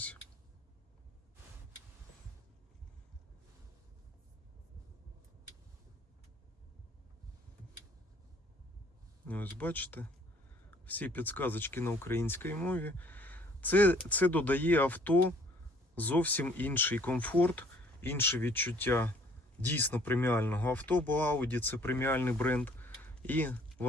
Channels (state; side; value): normal; both; correlation 0.58